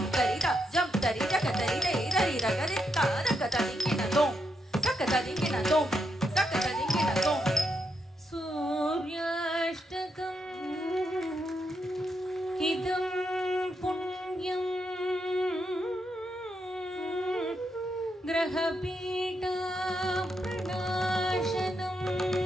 கரிதா ஜம் தரி தக்க தரி தை தரி ரகரித்தா தக்க ததிங்கின தோம் தக்க ததிங்கின தோம் தக்க ததிங்கின தோம் सूर्याष्टकम् इदं पुण्यं ग्रहपीठा प्रणाशनम्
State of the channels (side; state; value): both; normal; correlation 0.81